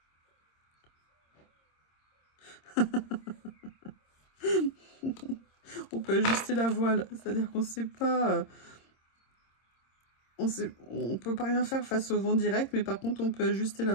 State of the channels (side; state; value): right; late; 26 ms